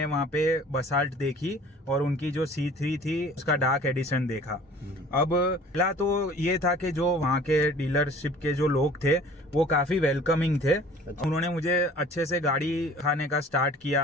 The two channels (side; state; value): both; normal; correlation 0.48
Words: वहाँ पे बसाल्ट देखी और उनकी जो C3 थी उसका डार्क एडिशन देखा। अब पहला तो ये था कि जो वहाँ के डीलरशिप के जो लोग थे वो काफी वेलकमिंग थे। उन्होंने मुझे अच्छे से गाड़ी खाने का स्टार्ट